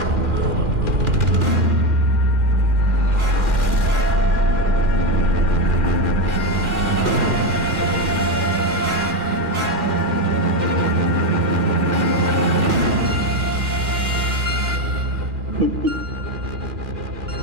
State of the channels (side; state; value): left; late; 2.4 ms